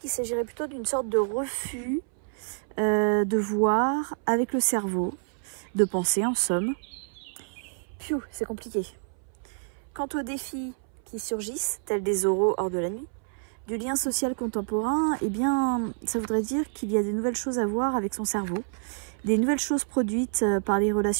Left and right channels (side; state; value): left; silent; 59 dB below the other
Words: s'agirait plutôt d'une sorte de refus de voir avec le cerveau, de penser en somme. Piou, c'est compliqué. Quant aux défis qui surgissent, tels des oraux hors de la nuit, du lien social contemporain, eh bien, ça voudrait dire qu'il y a des nouvelles choses à voir avec son cerveau, des nouvelles choses produites par les